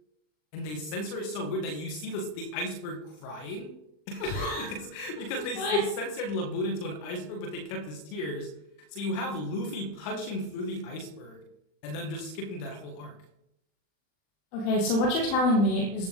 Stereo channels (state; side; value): late; right; 39 ms